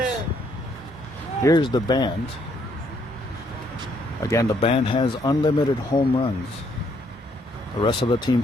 Here's the band. Again, the band has unlimited home runs. The rest of the team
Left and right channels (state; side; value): normal; both; correlation 0.70